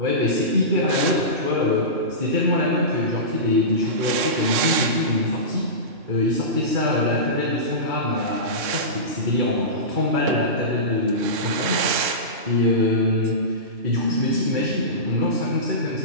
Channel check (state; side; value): late; left; 3.6 ms